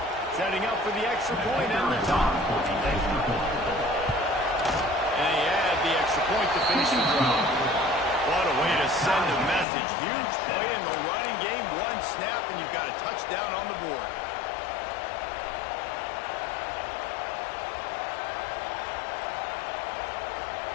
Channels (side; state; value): right; drops out; at 9.7 s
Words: Setting up for the extra point and the top. And he had the extra point to finish the drive. What a way to send a message. Huge play in the running game. One snap, and you've got a touchdown on the board.